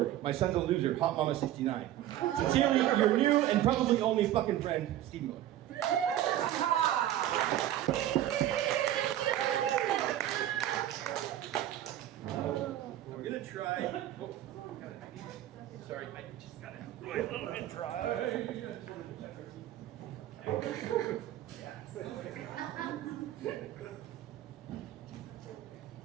my son's a loser, Hot Mama 69. Sincerely, your new and probably only fucking friend, Steve Miller. We're gonna try. Sorry, I just got it really a little bit dry.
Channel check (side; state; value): left; quieter; 12.8 dB